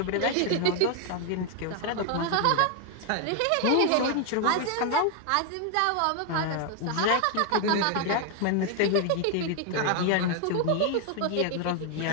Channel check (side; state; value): both; different; correlation 0.00